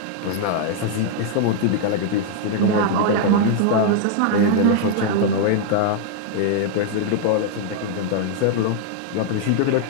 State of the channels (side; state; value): both; different; correlation 0.00